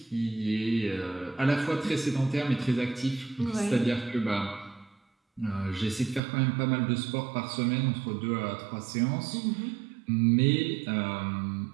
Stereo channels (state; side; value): drops out; left; at 6.2 s